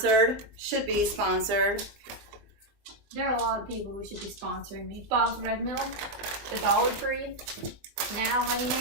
Should be sponsored. There are a lot of people who should be sponsoring me. Bob's Red Mill, the Dollar Tree, now Honey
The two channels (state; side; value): late; left; 20 ms